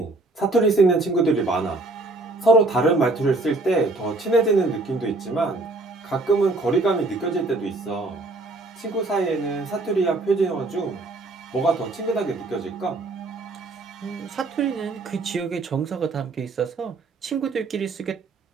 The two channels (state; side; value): quieter; left; 3.1 dB